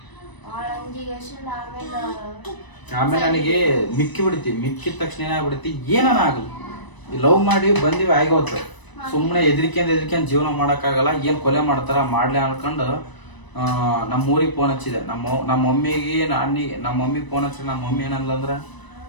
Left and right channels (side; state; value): right; late; 1.0 ms